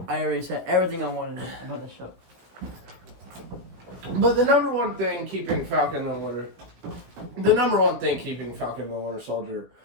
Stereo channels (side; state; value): left; late; 17 ms